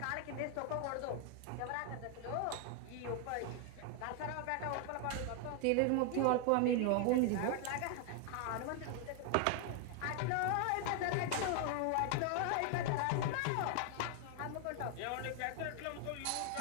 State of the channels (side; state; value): both; different; correlation 0.00